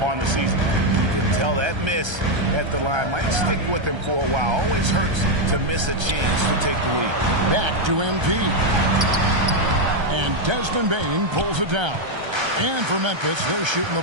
on the season. You can tell that miss at the line might stick with him for a while. Always hurts to miss a chance to take the lead. Back to MP. And Desmond Bain pulls it down. And for Memphis, they're shooting the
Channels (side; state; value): left; late; 1.3 ms